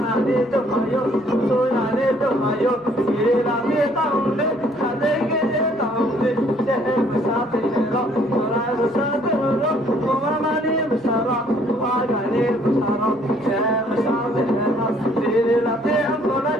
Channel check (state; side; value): noise; right; hum, 29 dB below the sound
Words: ne to mayo, soya ne to mayo, gire la ne taunde, khade gire taunde, sehe masate ro, mara masate ro, mama ne masara, ruada ne masara, sehe masate ro, gire la ne ambola,